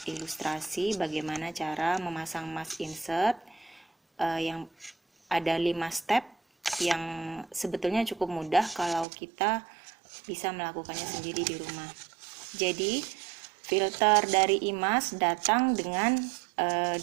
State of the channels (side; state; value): left; drops out; at 9.1 s